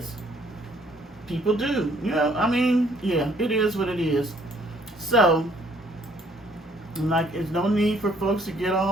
People do. It is what it is. So, there's no need for folks to get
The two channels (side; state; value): both; normal; correlation 0.63